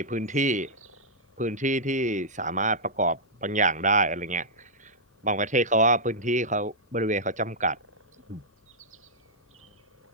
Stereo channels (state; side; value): normal; both; correlation -0.11